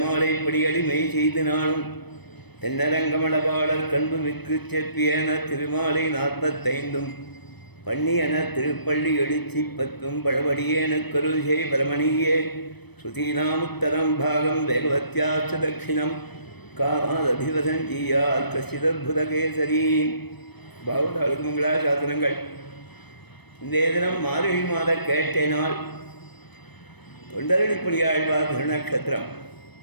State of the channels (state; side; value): late; right; 0.99 ms